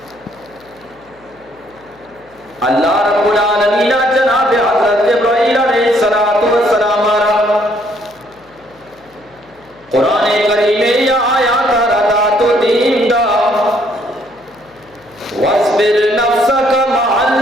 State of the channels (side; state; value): left; noise; hum, 30 dB below the sound